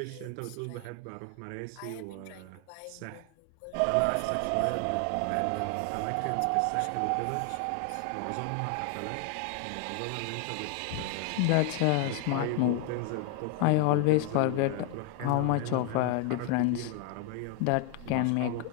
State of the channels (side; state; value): both; different; correlation 0.00